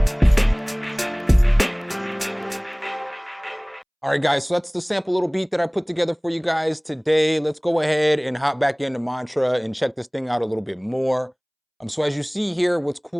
All right, guys, so that's the sample little beat that I put together for you guys today. Let's go ahead and hop back into Matra and check this thing out a little bit more. So as you see here, what's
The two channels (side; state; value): both; identical; correlation 1.00